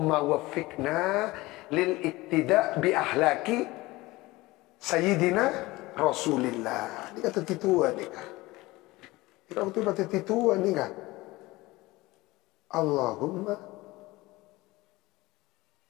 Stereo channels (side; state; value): right; quieter; 20.3 dB